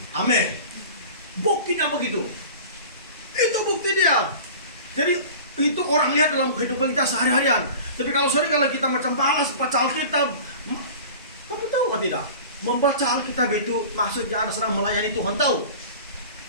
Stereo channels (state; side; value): inverted; both; correlation -0.39